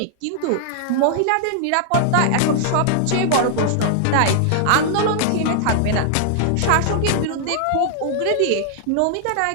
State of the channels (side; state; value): both; different; correlation -0.01